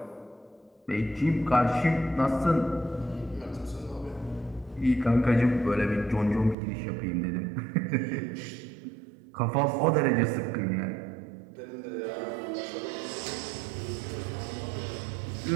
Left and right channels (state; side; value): drops out; left; at 6.6 s